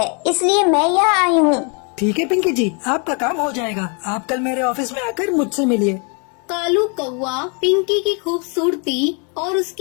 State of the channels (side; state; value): right; quieter; 36.7 dB